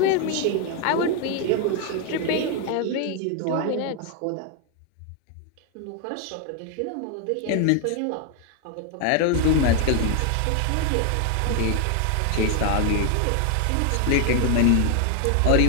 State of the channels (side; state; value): both; different; correlation 0.01